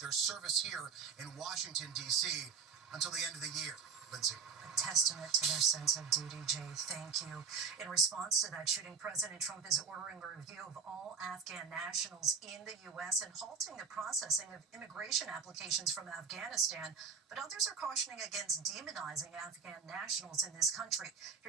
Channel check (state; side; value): quieter; left; 5.6 dB